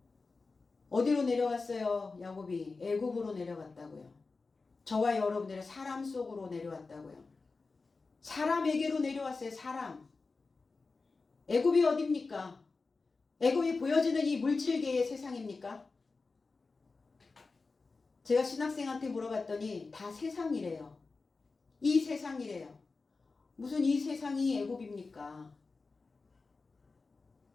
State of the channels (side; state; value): right; quieter; 4.0 dB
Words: 어디로 내려왔어요? 야곱이 애굽으로 내려갔다고요. 저와 여러분들의 사람 속으로 내려왔다고요. 사람에게로 내려왔어요. 사람. 애굽이 어딥니까? 애굽이 보여지는 이 물질계의 세상입니까? 제가 신학생한테 물어봤더니 다 세상이래요. 이 세상이래요. 무슨 이 세상이 애굽입니까?